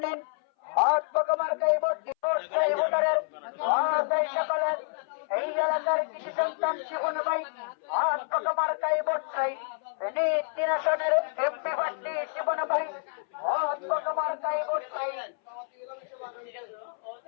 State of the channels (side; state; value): right; silent; 59 dB below the other